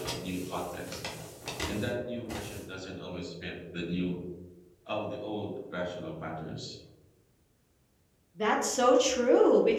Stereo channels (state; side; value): identical; both; correlation 1.00